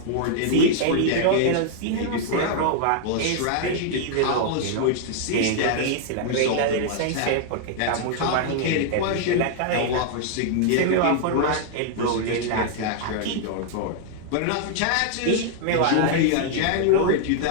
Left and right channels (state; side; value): different; both; correlation 0.00